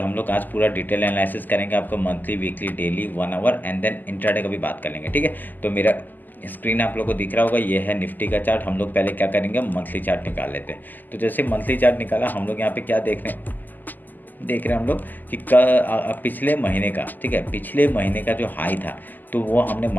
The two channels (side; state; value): right; late; 0.086 ms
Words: लोग आज पूरा डिटेल एनालिसिस करेंगे, आपको monthly, weekly, daily, 1 hour and then intraday का भी बात कर लेंगे। ठीक है, तो मेरा स्क्रीन आप लोगों को दिख रहा होगा, ये है निफ्टी का चार्ट। हम लोग पहले क्या करेंगे, मंथली चार्ट निकाल लेते हैं। तो जैसे मंथली चार्ट निकाला, हम लोग यहाँ पे क्या देख रहे हैं हम लोग कि पिछले महीने का, ठीक है, पिछले महीने का जो हाई था तो वो हमने